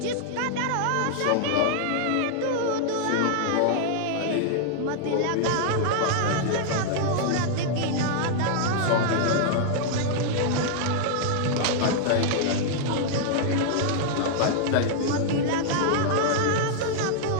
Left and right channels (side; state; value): both; different; correlation -0.01